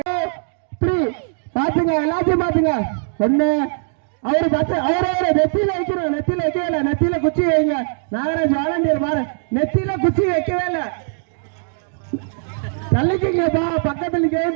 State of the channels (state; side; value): silent; left; digital silence